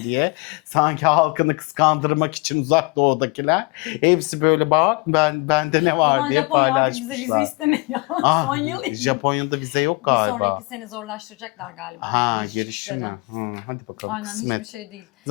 diye. Sanki halkını kıskandırmak için uzak doğudakiler. Hepsi böyle bak bende ne O var zaman diye Japonya artık bize paylaşmışlar. vize istemiyor. Son yıl. Japonya'da vize yok Bir galiba. sonraki sene zorlaştıracaklar galiba. Ha, Giriş girişine. çıkışları. Hadi bakalım. Aynen, kısmet. hiçbir şey değil.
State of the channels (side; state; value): right; quieter; 27.1 dB